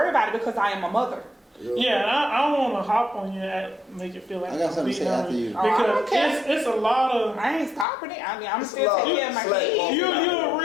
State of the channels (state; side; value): drops out; right; at 7.9 s